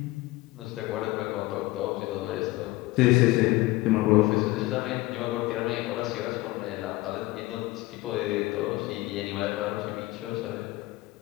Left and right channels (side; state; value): right; quieter; 19.6 dB